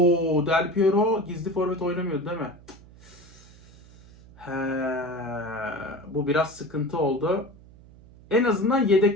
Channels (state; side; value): noise; right; hum, 23 dB below the sound